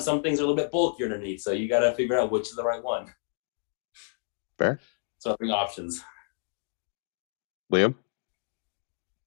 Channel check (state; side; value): silent; right; digital silence